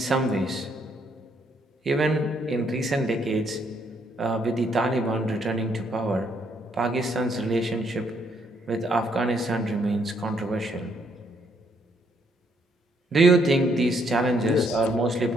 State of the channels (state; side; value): normal; both; correlation 0.71